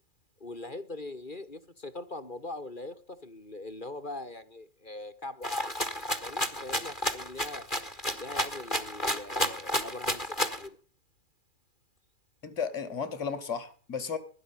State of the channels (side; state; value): right; late; 2.4 ms